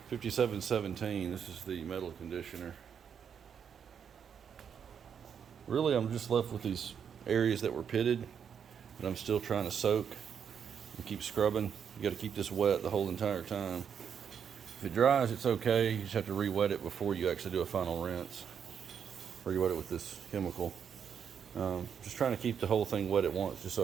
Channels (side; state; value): left; quieter; 7.6 dB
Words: 5717. This is the metal conditioner. Really, I'm just left with these areas that were pitted that I'm still trying to soak and keep scrubbing. You got to keep this wet the whole entire time. If it dries, it's okay. You just have to re-wet it before you actually do a final rinse. Re-wet it with this chemical. Just trying to keep the whole thing wet at once, just